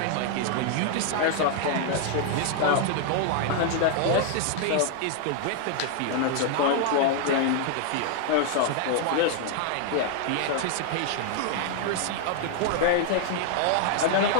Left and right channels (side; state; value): both; different; correlation 0.00